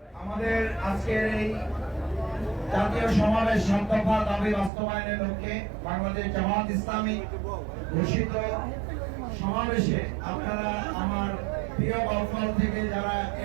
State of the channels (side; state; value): left; drops out; at 4.7 s